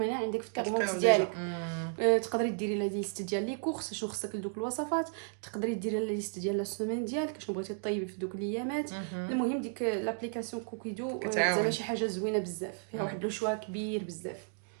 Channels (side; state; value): left; silent; 56 dB below the other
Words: هنا عندك في التابلو ديالك. تقدري ديري لا ليست ديال لي كورس شنو خصك لدوك الوصفات، تقدري ديري لا ليست ديال لا سيمين ديالك شنو بغيتي طيبي في دوك الايامات. المهم ديك لابليكاسيون كوكيدو كتعاون شي حاجه زوينه بزاف، فيها واحد لو شوا كبير بزاف.